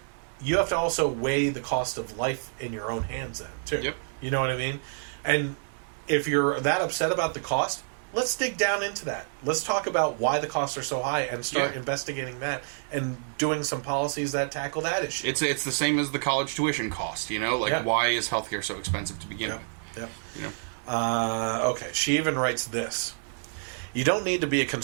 you have to also weigh the cost of life in your own hands then, too. You know what I mean? And if you're that upset about the cost, let's dig down into that. Let's talk about why the costs are so high and start investigating that and doing some policies that tackle that issue. It's the same as the college tuition cost, why is healthcare so expensive to begin with? Okay, she even writes this. You don't need to be a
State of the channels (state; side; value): silent; left; digital silence